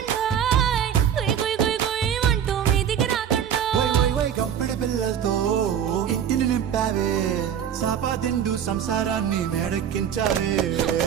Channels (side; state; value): left; quieter; 8.9 dB